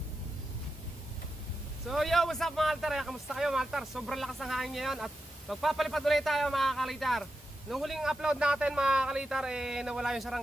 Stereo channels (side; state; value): both; normal; correlation 0.89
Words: So yo, what's up mga kaltar? Kamusta kayo mga kaltar? Sobrang lakas ng hangin ngayon at magpapalipad ulit tayo mga kalitar. Nung huling upload natin mga kalitar, nawala yung